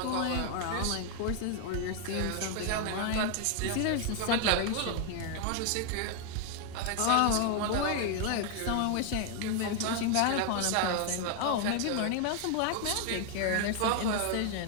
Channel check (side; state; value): both; different; correlation 0.00